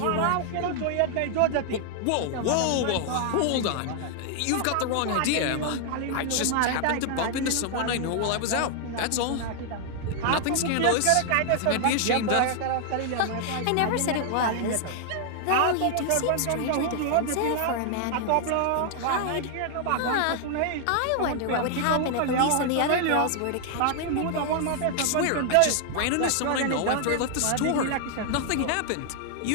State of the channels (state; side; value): different; both; correlation 0.00